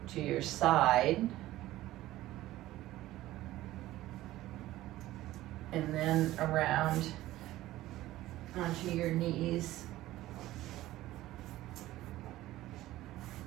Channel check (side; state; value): left; quieter; 15.9 dB